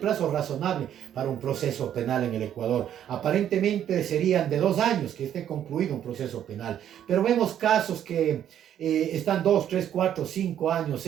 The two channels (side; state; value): left; quieter; 10.3 dB